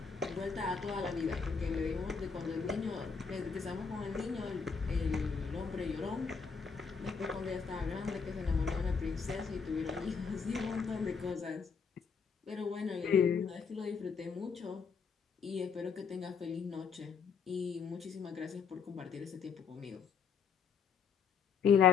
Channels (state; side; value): quieter; right; 6.0 dB